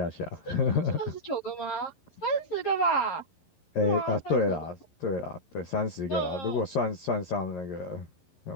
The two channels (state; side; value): late; right; 11 ms